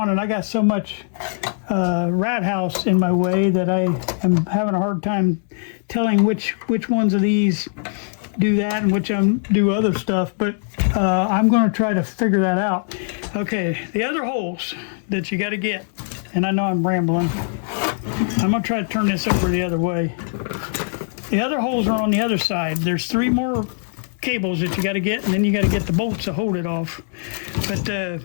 and I got so much rat house in my way that I am having a hard time telling which ones of these do that and which do other stuff, but I'm going to try to figure that out. Okay, the other holes that you got to get, and I know I'm rambling, I'm going to try to turn this over the other way. The other holes are on the other side. There's 3 more cables that you got to get, and then you got to get the bolts to hold it off. But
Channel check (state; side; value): silent; right; digital silence